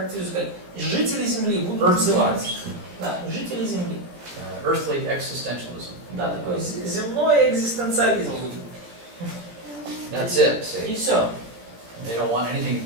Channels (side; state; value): left; late; 17 ms